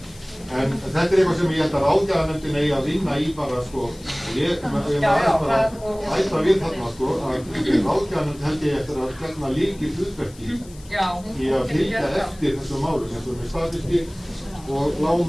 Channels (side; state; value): left; noise; hiss, 23 dB below the sound